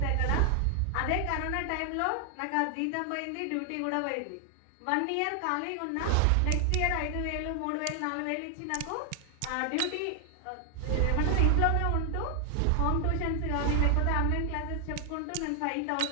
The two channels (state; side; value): different; both; correlation 0.00